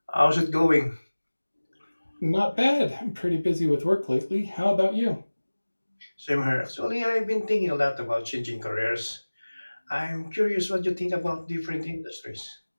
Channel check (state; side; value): inverted; both; correlation -1.00